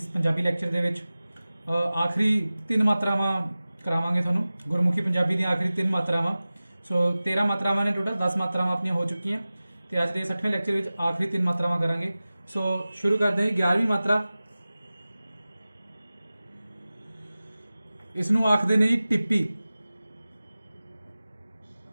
ਪੰਜਾਬੀ ਲੈਕਚਰ ਦੇ ਵਿੱਚ ਆਖਰੀ 3 ਮਾਤਰਾਵਾਂ ਕਰਾਵਾਂਗੇ ਤੁਹਾਨੂੰ। ਗੁਰਮੁਖੀ ਪੰਜਾਬੀ ਦੀਆਂ ਆਖਰੀ 3 ਮਾਤਰਾਵਾਂ। ਸੋ 13 ਮਾਤਰਾਵਾਂ ਨੇ ਟੋਟਲ, 10 ਮਾਤਰਾਵਾਂ ਆਪਣੀਆਂ ਹੋ ਚੁੱਕੀਆਂ ਤੇ ਅੱਜ ਦੇ 60ਵੇਂ ਲੈਕਚਰ ਵਿੱਚ ਆਖਰੀ 3 ਮਾਤਰਾਵਾਂ ਕਰਾਂਗੇ। ਸੋ ਸ਼ੁਰੂ ਕਰਦੇ ਹਾਂ ਜੀ। 11ਵੀਂ ਮਾਤਰਾ, ਇਸ ਨੂੰ ਆਖਦੇ ਨੇ ਜੀ ਟਿੱਪੀ।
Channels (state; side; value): inverted; both; correlation -0.97